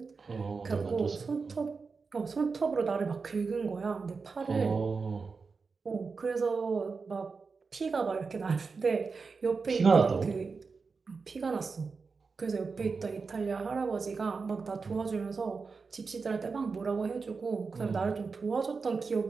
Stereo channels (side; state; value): left; quieter; 4.7 dB